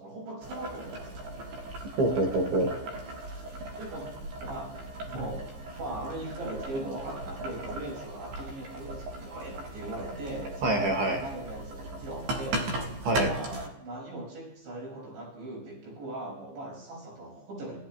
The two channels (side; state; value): left; late; 15 ms